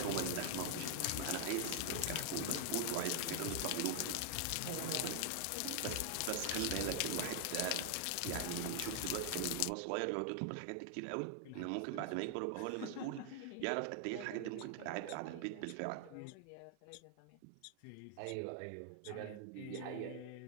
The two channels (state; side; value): different; both; correlation 0.00